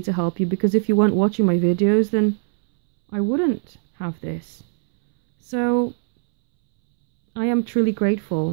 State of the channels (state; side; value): silent; left; 65 dB below the other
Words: to help you, because if you weren't watching my videos, then I wouldn't have this. So I am truly